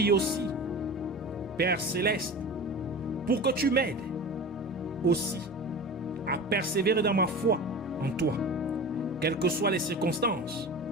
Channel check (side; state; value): both; normal; correlation 0.33